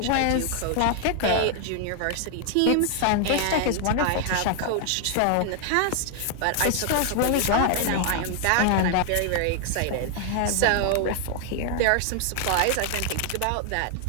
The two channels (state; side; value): different; both; correlation 0.00